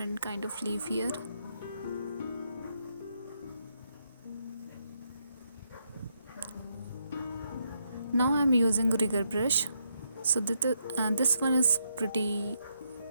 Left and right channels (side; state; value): both; inverted; correlation -0.79